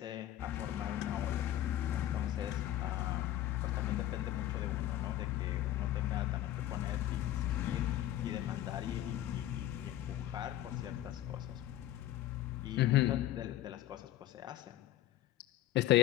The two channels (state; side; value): quieter; right; 13.6 dB